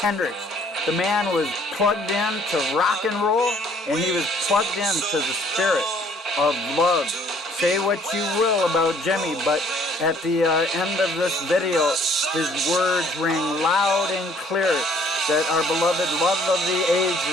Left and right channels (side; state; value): both; normal; correlation 0.60